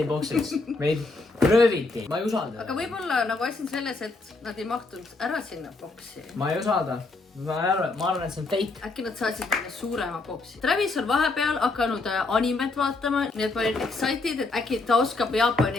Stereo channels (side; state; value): right; quieter; 3.5 dB